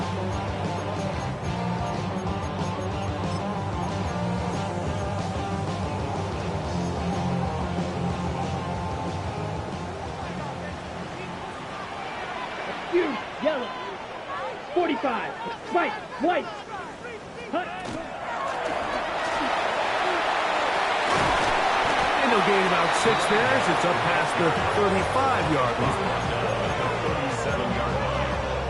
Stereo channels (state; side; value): identical; both; correlation 1.00